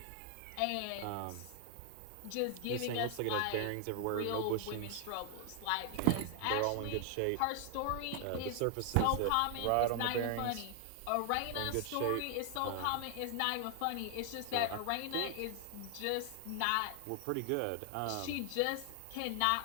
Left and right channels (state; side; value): different; both; correlation 0.00